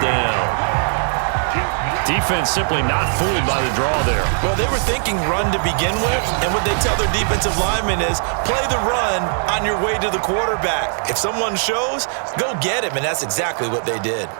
down. Defense simply not fooled by the draw there. Well, they were thinking run to begin with, and what they tell their defensive linemen is play the run on your way to the quarterback. If someone shows, go get him, and that's exactly what they did.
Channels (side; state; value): left; silent; 66 dB below the other